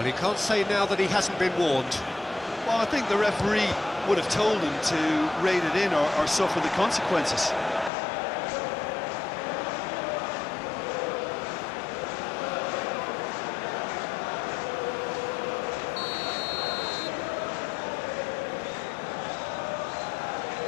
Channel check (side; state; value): right; drops out; at 7.9 s